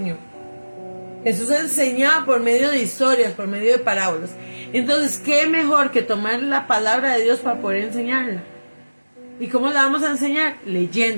Jesús enseñaba por medio de historias, por medio de parábolas. Entonces, ¿qué mejor que tomar la palabra de Dios para poder enseñarla? ¿Y cómo la vamos a enseñar?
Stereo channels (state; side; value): inverted; both; correlation -1.00